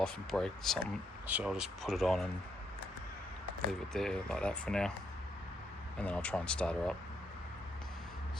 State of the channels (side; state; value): both; normal; correlation 0.77